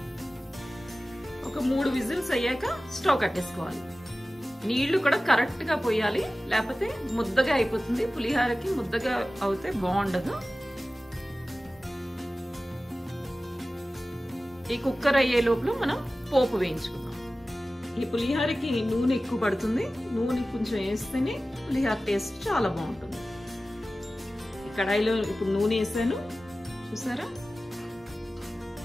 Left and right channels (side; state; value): both; normal; correlation 0.96